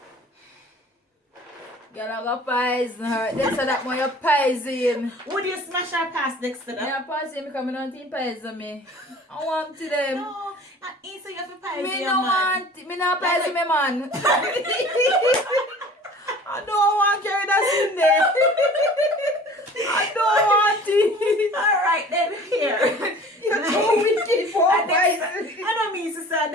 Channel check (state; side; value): normal; both; correlation 0.45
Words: Girl, I go poison her. Dexter, that one you poison. Would you smash our pass next to that? Yeah, pass him because I don't think poison me. I want to them. No, not easy. You have to poison Me your no man. want. Me not poison me man. I don't want to carry that in there. I don't want it. Alright then, here. You're too wicked for I don't mean to say